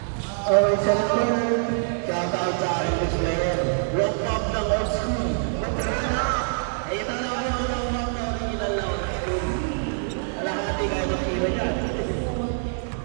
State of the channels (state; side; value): silent; left; digital silence